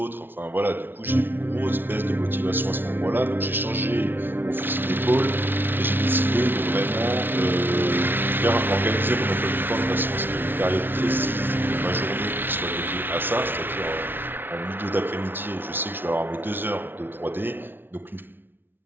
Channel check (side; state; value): left; late; 0.10 ms